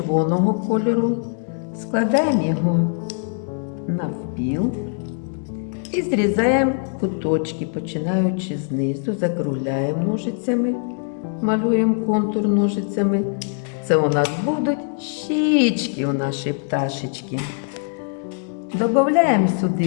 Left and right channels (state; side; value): silent; right; 59 dB below the other